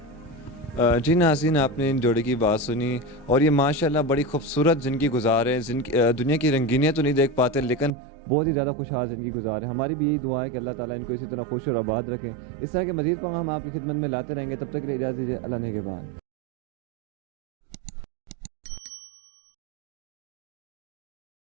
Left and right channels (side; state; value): left; drops out; at 7.9 s